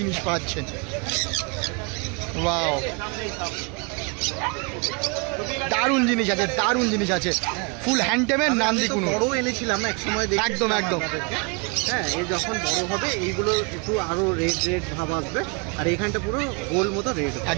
পাচ্ছেন। ওয়াও, দারুণ জিনিস আছে, দারুণ জিনিস আছে। ফুল হ্যান্ড টেমের নান্দি কুনুর বড় এনেছিলাম এক সময়, একদম একদম। হ্যাঁ, এই যখন বড় হবে এইগুলো একটু আরো রেড ভাব আসবে। আর এখানটা পুরো গোল মতো রেড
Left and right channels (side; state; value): left; quieter; 32.4 dB